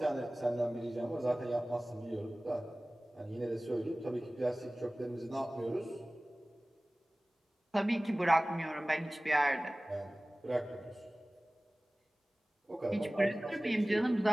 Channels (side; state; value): both; normal; correlation 0.98